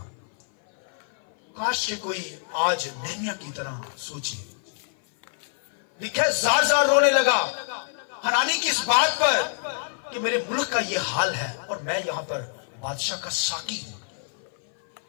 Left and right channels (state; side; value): silent; right; 57 dB below the other